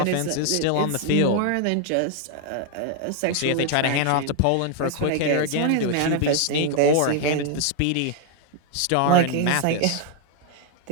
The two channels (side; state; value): both; different; correlation 0.00